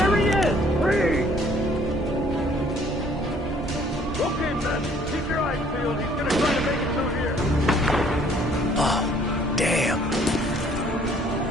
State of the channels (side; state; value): both; normal; correlation 0.60